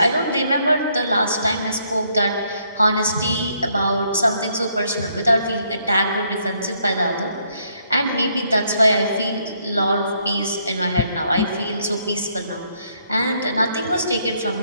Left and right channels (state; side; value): inverted; both; correlation -0.71